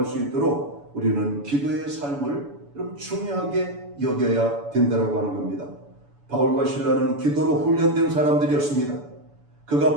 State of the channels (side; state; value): left; late; 7.0 ms